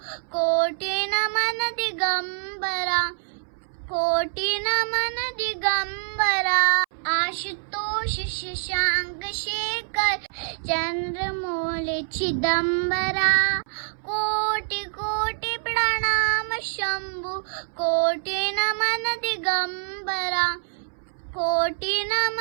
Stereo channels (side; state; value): left; silent; 61 dB below the other